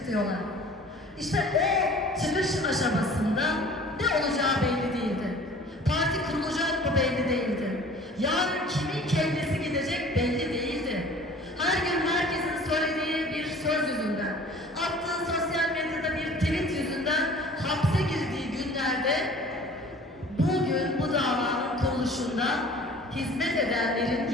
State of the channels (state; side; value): normal; both; correlation 0.47